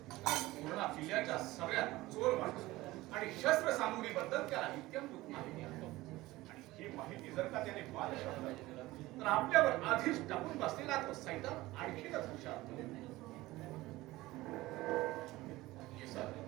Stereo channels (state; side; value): quieter; left; 18.6 dB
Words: पूर्ण किल्ल्याच्या सगळ्यात चोर माणूस आणि शस्त्र सामुग्रीबद्दल त्याला इत्यंभूत माहिती आहे. आणि ही माहिती जर का त्याने बादशहाला दिली तर आपल्यावर आधीच टाकून बसलेला तो सैतान आणखीनच हुशार होईल.